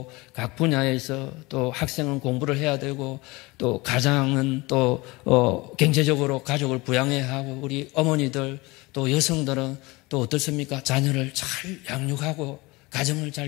각 분야에서 또 학생은 공부를 해야 되고 또 가장은 또 경제적으로 가족을 부양해야 하고 우리 어머니들 또 여성들은 또 어떻습니까? 자녀를 잘 양육하고 가정을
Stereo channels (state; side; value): quieter; right; 23.1 dB